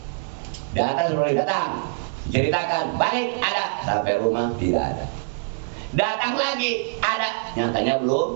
Datang, ceritakan, balik ada, sampai rumah tidak ada. Datang lagi, ada, nyatanya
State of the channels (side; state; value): left; silent; 63 dB below the other